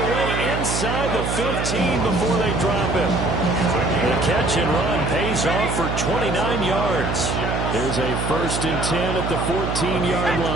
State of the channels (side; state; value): right; noise; hum, 2 dB below the sound